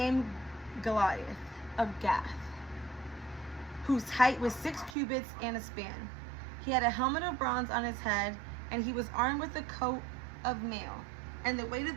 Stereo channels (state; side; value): drops out; left; at 5.0 s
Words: Goliath of Gath, whose height was 6 cubits and a span. He had a helmet of bronze on his head, and he was armed with a coat of mail. And the weight